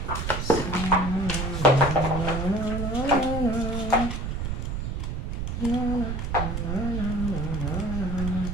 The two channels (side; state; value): right; noise; rumble, 3 dB below the sound